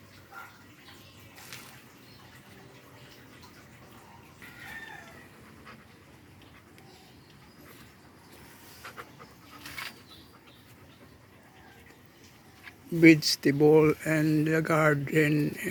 Vegetable and the garden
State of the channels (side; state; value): both; identical; correlation 1.00